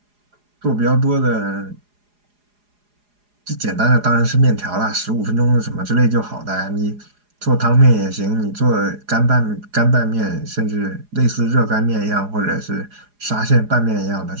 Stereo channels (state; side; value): late; left; 4.8 ms